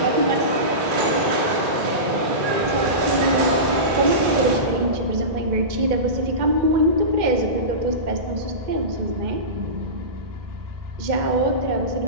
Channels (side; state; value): left; late; 2.3 ms